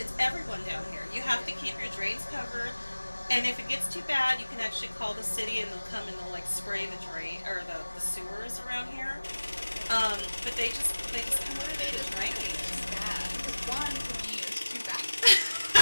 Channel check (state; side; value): inverted; both; correlation -1.00